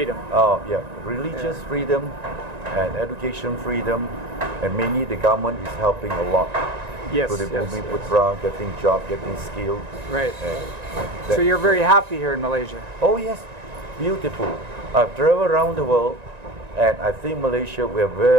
Oh, yeah. Religious freedom and education freedom, and mainly the government is helping a lot. Yes. To the Putra, getting job, getting skilled. Right. So you're very happy here in Malaysia? Oh, yes. Beautiful. I've traveled around the world, and I think Malaysia, we are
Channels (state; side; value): late; left; 1.9 ms